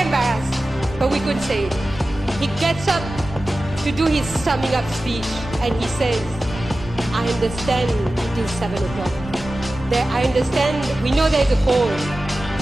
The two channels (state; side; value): normal; both; correlation 0.95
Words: but we couldn't say it. He gets up to do his summing up speech, and he says, I understand it is 7 o'clock. I understand, we know there's a call.